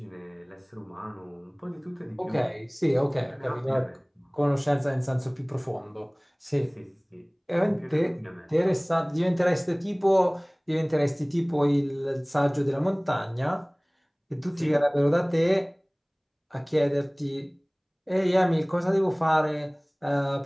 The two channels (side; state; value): both; identical; correlation 1.00